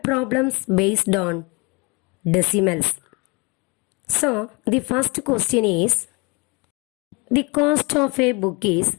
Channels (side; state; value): right; quieter; 29.0 dB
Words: problems based on decimals. So the first question is, the cost of a book is